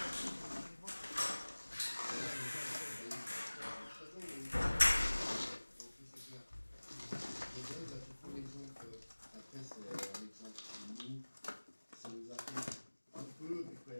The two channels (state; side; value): inverted; both; correlation -1.00